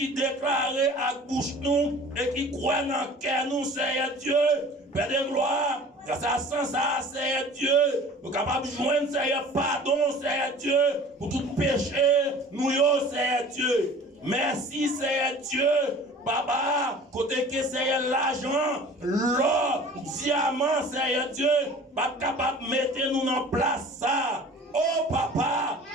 déclarons à bouche nous et qui croient dans le cœur nous, Seigneur Dieu, Père de gloire, grâce à ça, Seigneur Dieu, nous sommes capables de joindre, Seigneur, pardon, Seigneur Dieu, pour tout péché, nous, Seigneur Dieu. Merci, Seigneur Dieu. Papa, côté que Seigneur l'argent, l'or, diamant, Seigneur Dieu, pas capable de mettre nous en place ça. Oh papa,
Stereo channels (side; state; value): both; normal; correlation 0.44